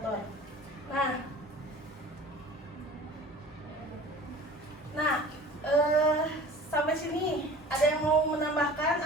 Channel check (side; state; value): both; normal; correlation 0.42